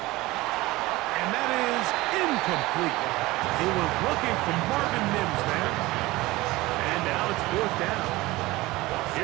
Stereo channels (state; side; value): quieter; left; 19.7 dB